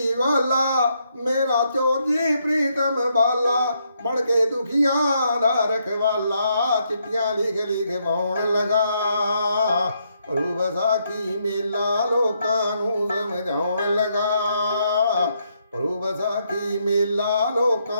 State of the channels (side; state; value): both; inverted; correlation -0.76